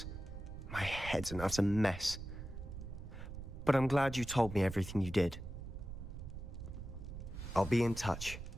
My head's an utter mess. But I'm glad you told me everything you did. I'll be in touch.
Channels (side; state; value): right; noise; rumble, 9 dB below the sound